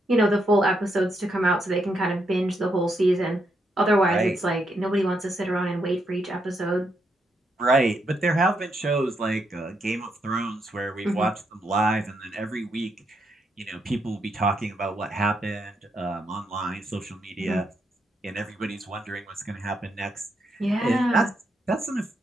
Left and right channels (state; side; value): normal; both; correlation 0.79